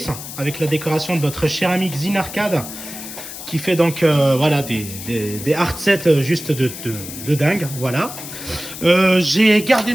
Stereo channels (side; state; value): left; noise; hiss, 11 dB below the sound